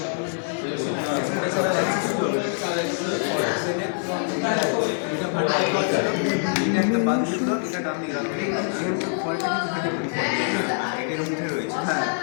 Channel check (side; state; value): right; silent; 60 dB below the other